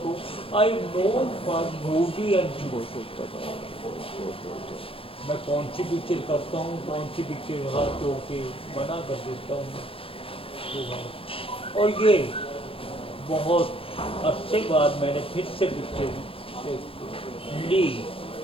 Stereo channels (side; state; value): right; late; 0.27 ms